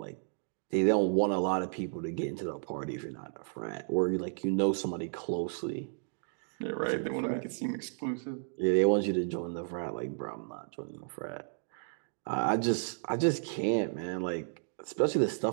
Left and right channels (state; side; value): silent; left; digital silence